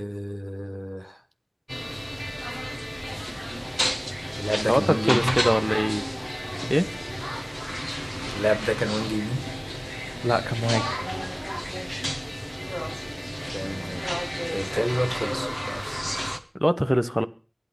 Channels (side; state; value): both; identical; correlation 1.00